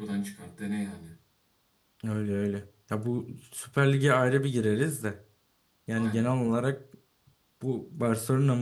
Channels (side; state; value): both; identical; correlation 1.00